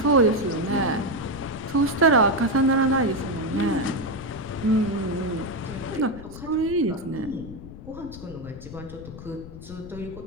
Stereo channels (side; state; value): left; noise; rumble, 14 dB below the sound